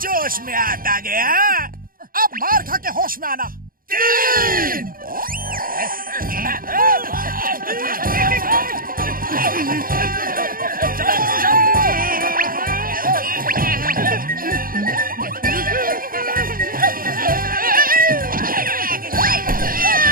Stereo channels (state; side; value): late; left; 0.41 ms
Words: में आता गया। अब मार खा के होश में आना। 3।